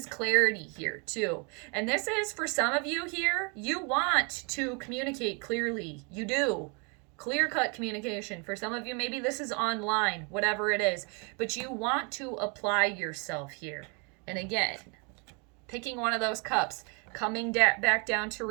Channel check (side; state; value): left; quieter; 34.2 dB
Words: clarity here too. And this is, for some of you here, you want to communicate clearly. You do. Clear-cut communication. For some of you, maybe this is online, whatever it is, but you want to apply yourself here. And again, picking one of those cups, coming back down to